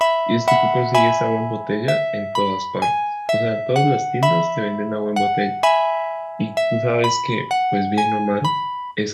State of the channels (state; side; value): identical; both; correlation 1.00